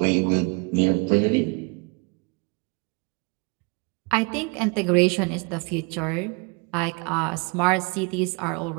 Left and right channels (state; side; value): quieter; left; 30.6 dB